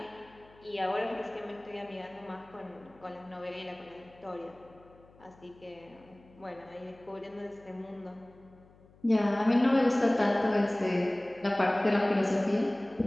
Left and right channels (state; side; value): noise; left; hum, 26 dB below the sound